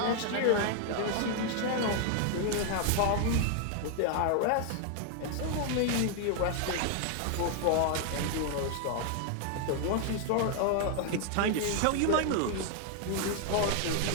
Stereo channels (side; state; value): both; different; correlation 0.00